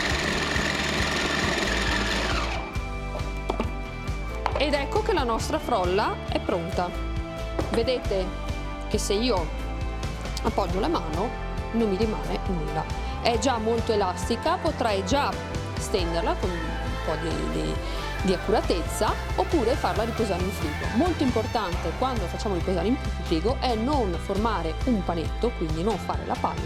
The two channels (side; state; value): both; identical; correlation 1.00